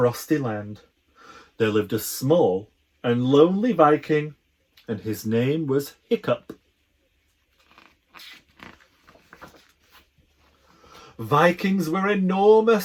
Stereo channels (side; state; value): both; identical; correlation 1.00